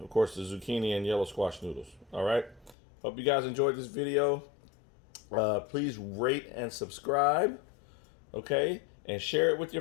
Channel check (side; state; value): right; drops out; at 2.8 s